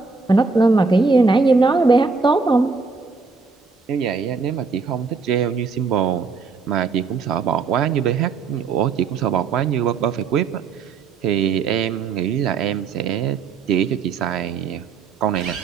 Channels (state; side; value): quieter; left; 4.7 dB